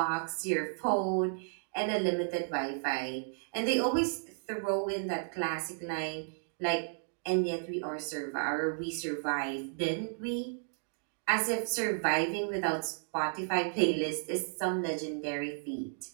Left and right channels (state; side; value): silent; left; digital silence